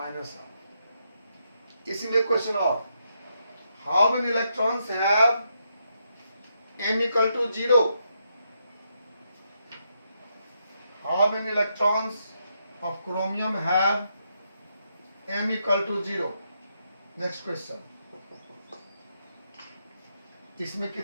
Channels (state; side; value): inverted; both; correlation -0.80